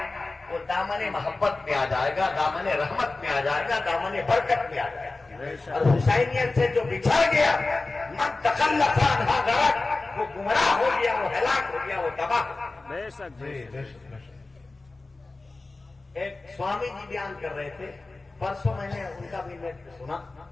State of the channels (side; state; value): right; quieter; 3.4 dB